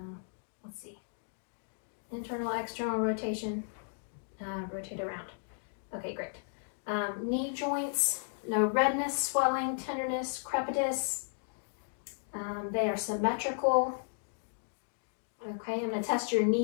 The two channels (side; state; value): right; silent; digital silence